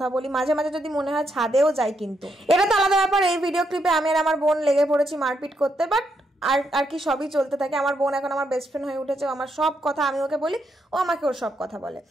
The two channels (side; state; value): both; normal; correlation 0.79